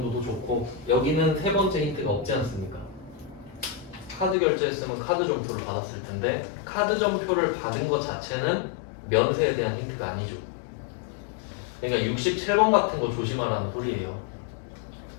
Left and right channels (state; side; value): drops out; right; at 4.4 s